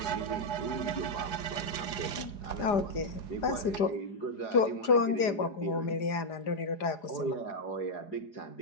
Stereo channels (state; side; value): late; right; 4.8 ms